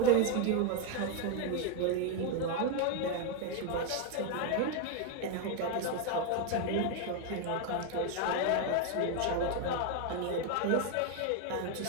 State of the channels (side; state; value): both; different; correlation 0.01